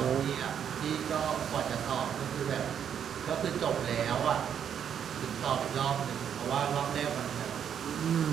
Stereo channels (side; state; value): left; quieter; 8.5 dB